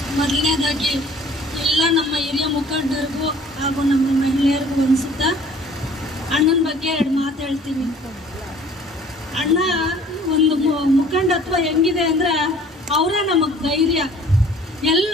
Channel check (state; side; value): normal; both; correlation 0.52